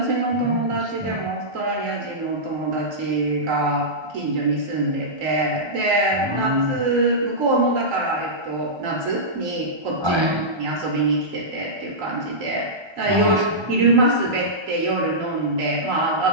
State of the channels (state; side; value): late; left; 1.3 ms